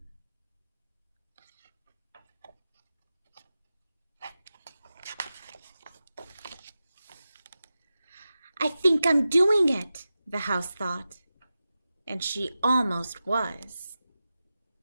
I think I'm doing it, the house thought, and she almost was.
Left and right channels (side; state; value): both; inverted; correlation -0.93